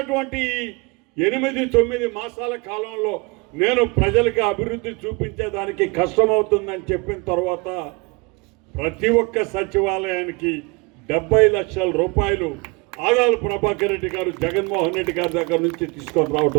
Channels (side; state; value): left; quieter; 27.5 dB